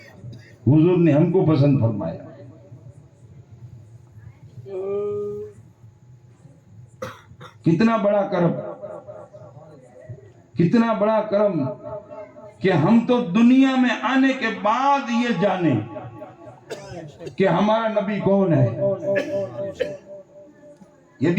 حضور نے ہم کو پسند فرمایا. کتنا بڑا کرم، کتنا بڑا کرم کہ ہم تو دنیا میں آنے کے بعد یہ جانیں کہ ہمارا نبی کون ہے. یہ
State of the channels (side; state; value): both; identical; correlation 1.00